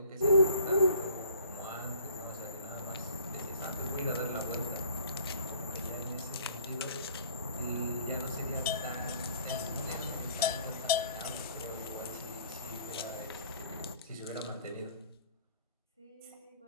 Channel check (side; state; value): both; inverted; correlation -0.52